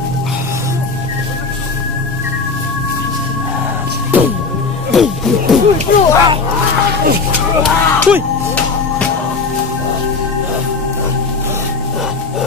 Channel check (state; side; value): quieter; right; 4.3 dB